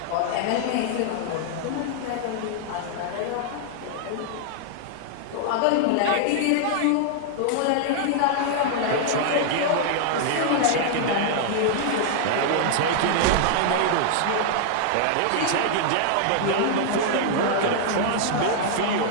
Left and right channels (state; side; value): different; both; correlation -0.01